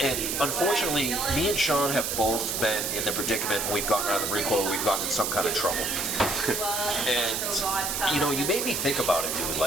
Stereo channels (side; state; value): right; noise; hiss, 1 dB below the sound